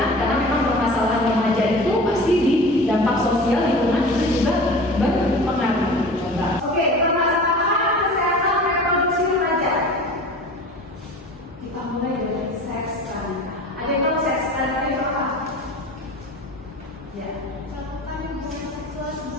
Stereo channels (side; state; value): both; normal; correlation 0.38